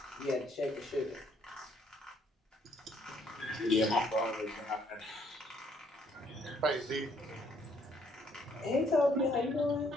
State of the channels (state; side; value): normal; both; correlation 0.66